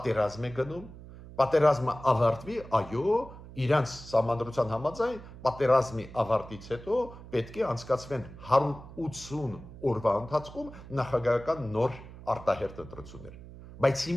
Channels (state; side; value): noise; right; hum, 16 dB below the sound